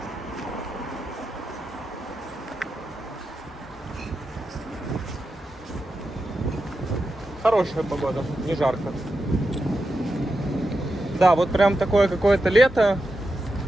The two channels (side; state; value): both; normal; correlation 0.89